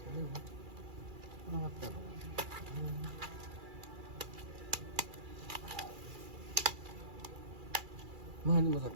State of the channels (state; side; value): late; left; 2.4 ms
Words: れなかったの。まあでもさ、